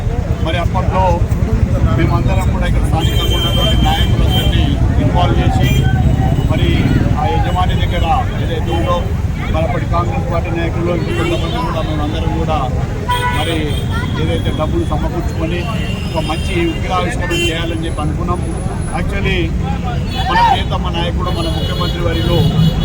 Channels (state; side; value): identical; both; correlation 1.00